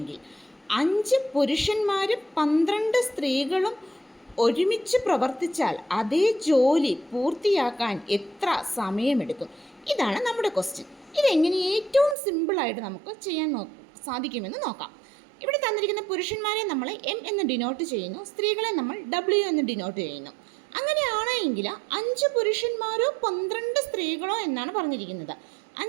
5 പുരുഷന്മാരും 12 സ്ത്രീകളും ഒരുമിച്ച് പ്രവർത്തിച്ചാൽ അതേ ജോലി പൂർത്തിയാക്കാൻ എത്ര സമയമെടുക്കും? ഇതാണ് നമ്മുടെ ക്വസ്റ്റ്യൻ. ഇതെങ്ങനെ ഏറ്റവും സിമ്പിളായിട്ട് നമുക്ക് ചെയ്യാൻ സാധിക്കുമെന്ന് നോക്കാം. ഇവിടെ തന്നിരിക്കുന്ന പുരുഷന്മാരെ നമ്മൾ എം എന്ന് ഡിനോട്ട് ചെയ്യുന്നു, സ്ത്രീകളെ നമ്മൾ ഡബ്ല്യു എന്ന് ഡിനോട്ട് ചെയ്യുന്നു. അങ്ങനെയാണെങ്കിൽ 5 പുരുഷന്മാരോ 12 സ്ത്രീകളോ എന്നാണ് പറഞ്ഞിരിക്കുന്നത്.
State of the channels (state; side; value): drops out; left; at 12.2 s